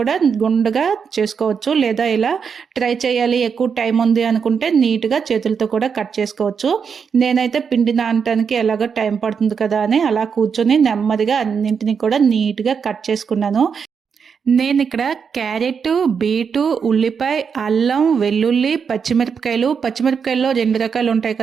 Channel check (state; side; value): quieter; left; 6.4 dB